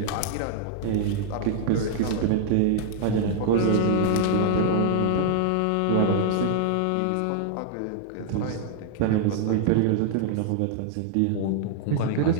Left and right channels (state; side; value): different; both; correlation 0.00